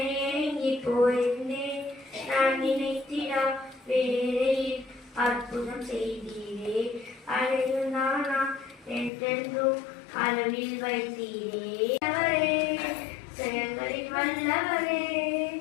ஏங்கி போயிருந்தேன். நான் நினைத்திடா வேளையில் அற்புதம் செய்தீரே, அழைந்தானா என்றென்றும் அளவில் வைத்தீரே. செயல்களில் வல்லவரே,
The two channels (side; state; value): right; drops out; at 9.1 s